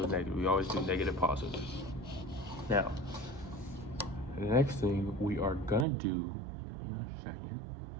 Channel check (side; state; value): left; drops out; at 5.9 s